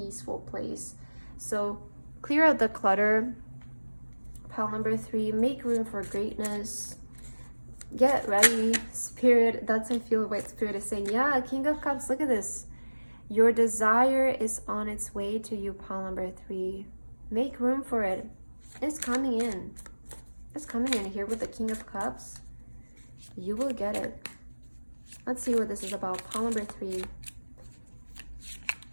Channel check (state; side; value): inverted; both; correlation -1.00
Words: place. So clear out the clutter. Pile number 3, make room for greatness. Get ready, Spirit. That's, I feel what Spirit is saying. Yeah, King of Cups, look at this. Your desire is on its way to you, pile number 3. Make room for it. It's coming in. It's coming in here with the King of Cups. You will get it. Let's see what this is about. Pile number 3.